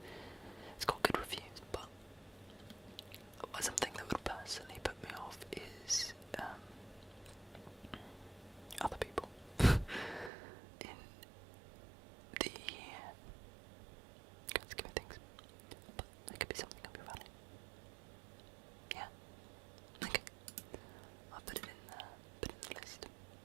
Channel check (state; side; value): drops out; left; at 10.3 s